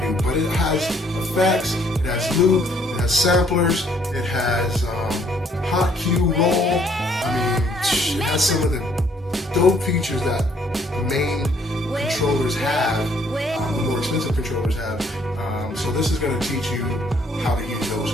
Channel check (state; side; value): normal; both; correlation 0.65